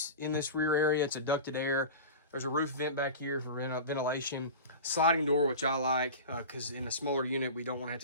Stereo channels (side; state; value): both; inverted; correlation -0.31